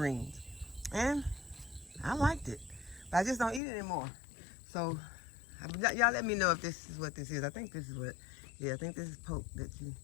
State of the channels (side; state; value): right; drops out; at 3.6 s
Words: And I liked it, but I just don't eat it anymore. So y'all let me know if this is what this is. I think this is what, yeah, I think this is poke